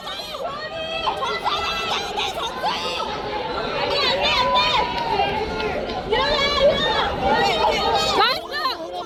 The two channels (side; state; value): both; identical; correlation 1.00